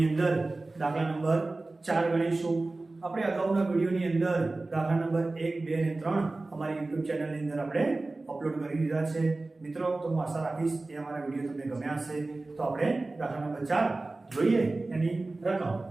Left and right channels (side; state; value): left; quieter; 3.2 dB